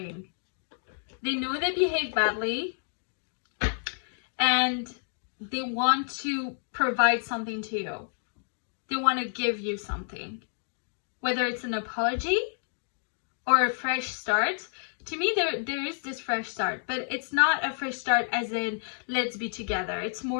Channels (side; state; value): right; silent; digital silence